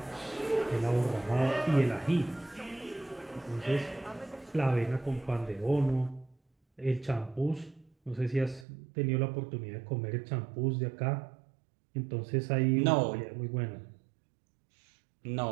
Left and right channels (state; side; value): drops out; left; at 8.7 s